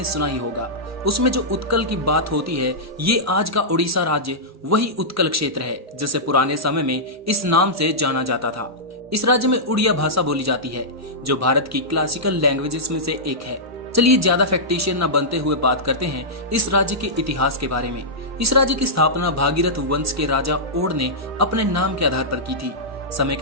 सुना ही होगा, उसमें जो उत्कल की बात होती है, ये आज का उड़ीसा राज्य वही उत्कल क्षेत्र है जिसे पुराने समय में इस नाम से जाना जाता था। इस राज्य में उड़िया भाषा बोली जाती है, जो भारत की क्लासिकल लैंग्वेजेस में से एक है। चलिए ज्यादा फैक्टिशियन न बनते हुए बात करते हैं इस राज्य के इतिहास के बारे में। इस राज्य की स्थापना भागीरथ वंश के राजा ओड ने अपने नाम के आधार पर की थी। समय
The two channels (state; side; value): normal; both; correlation -0.12